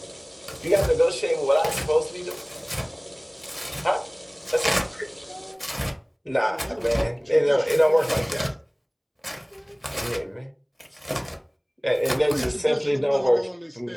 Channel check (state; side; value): identical; both; correlation 1.00